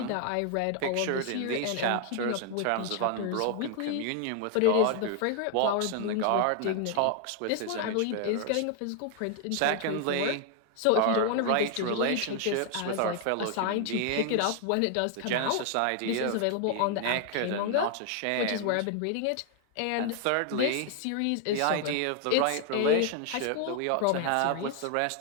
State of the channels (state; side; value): different; both; correlation 0.00